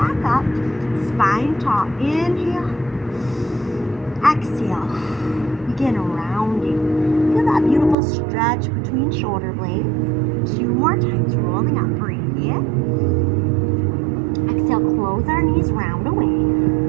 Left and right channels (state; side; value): drops out; left; at 8.0 s